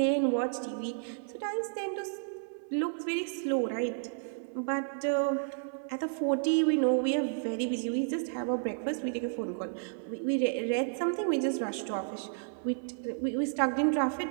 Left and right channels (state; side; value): silent; left; 57 dB below the other